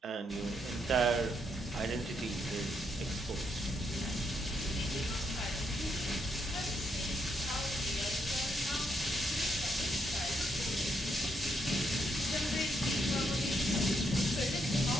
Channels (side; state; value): both; normal; correlation 0.77